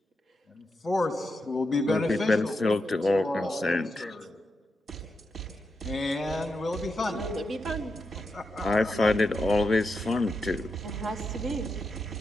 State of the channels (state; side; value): normal; both; correlation 0.86